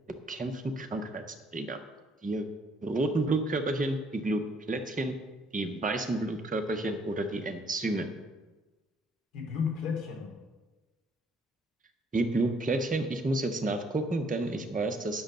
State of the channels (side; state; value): both; normal; correlation 0.65